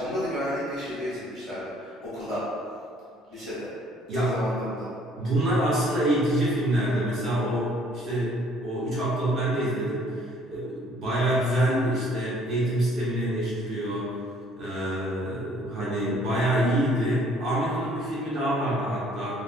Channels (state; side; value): normal; both; correlation 0.60